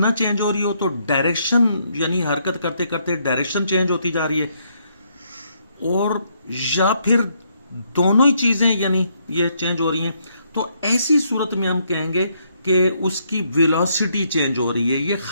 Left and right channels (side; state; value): both; inverted; correlation -0.73